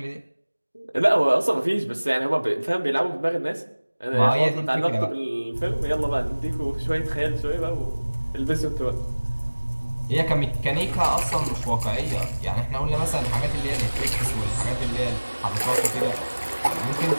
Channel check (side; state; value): both; inverted; correlation -1.00